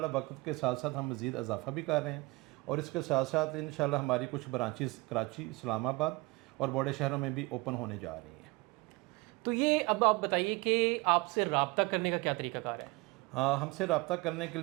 وقت کے ساتھ ساتھ ہم مزید اضافہ بھی کر رہے ہیں. اور اس کے ساتھ ساتھ انشاءاللہ ہماری کچھ برانچز کراچی، اسلام آباد اور بڑے شہروں میں بھی اوپن ہونے جا رہی ہیں. تو یہ اب آپ بتائیے کہ آپ سے رابطہ کرنے کا کیا طریقہ کار ہے؟ ہاں، ہم سے رابطہ کرنے کے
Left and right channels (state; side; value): quieter; left; 24.0 dB